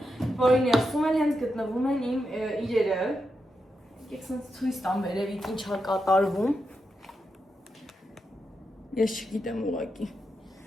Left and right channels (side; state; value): both; normal; correlation 0.86